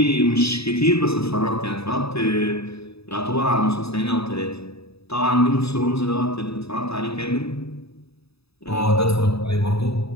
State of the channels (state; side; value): late; right; 0.78 ms